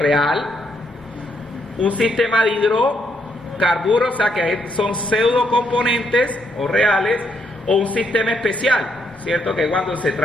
un sistema de hidrocarburos, o sea, que son pseudo componentes o reales, o un sistema especial, ¿cierto? Que cuando se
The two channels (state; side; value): normal; both; correlation 0.75